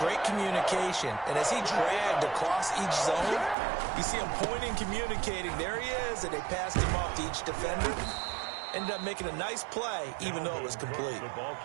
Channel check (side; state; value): left; drops out; at 3.6 s